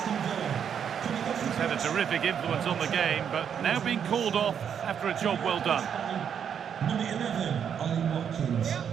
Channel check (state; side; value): quieter; left; 8.0 dB